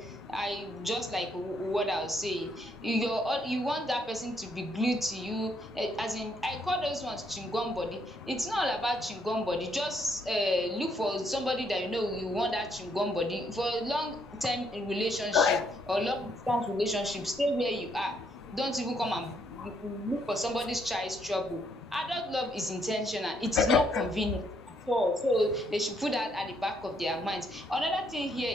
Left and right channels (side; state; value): both; normal; correlation 0.72